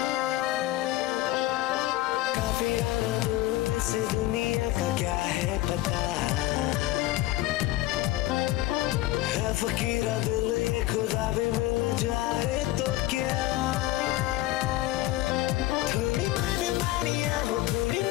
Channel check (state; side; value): quieter; right; 16.1 dB